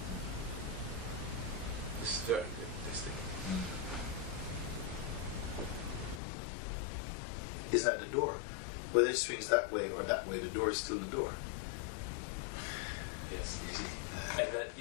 This is very good. Is at the door. Whether it swings that way or that way, the door is still the door. Yes. You see? And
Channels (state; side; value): drops out; right; at 6.2 s